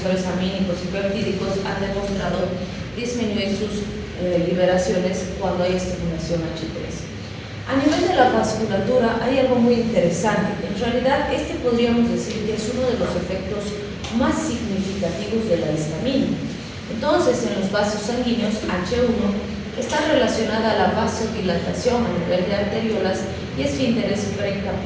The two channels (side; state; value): both; identical; correlation 1.00